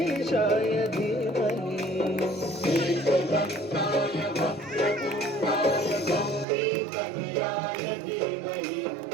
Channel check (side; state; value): left; drops out; at 6.5 s